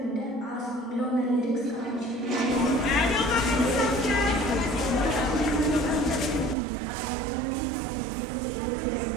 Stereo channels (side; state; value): left; drops out; at 6.6 s